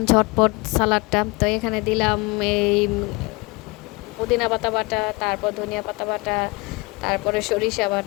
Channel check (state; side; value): quieter; right; 26.0 dB